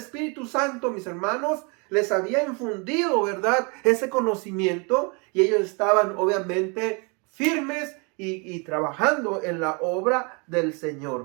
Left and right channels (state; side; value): quieter; left; 32.1 dB